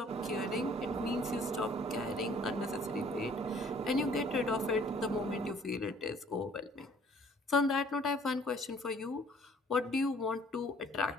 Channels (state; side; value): normal; both; correlation 0.57